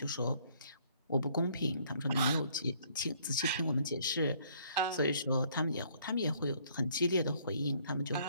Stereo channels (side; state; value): both; inverted; correlation -0.63